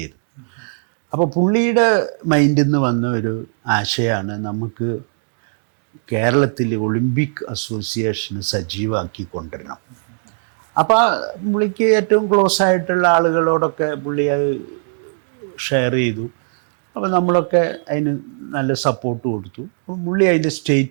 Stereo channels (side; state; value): left; silent; digital silence